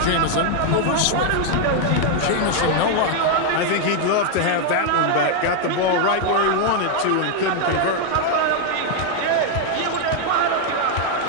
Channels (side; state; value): both; different; correlation 0.00